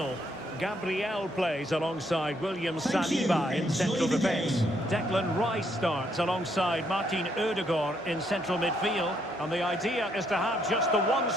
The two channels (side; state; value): both; normal; correlation 0.72